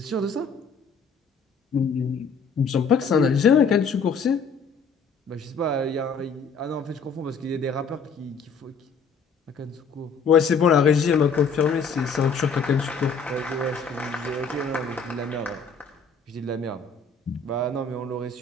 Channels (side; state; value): right; quieter; 4.9 dB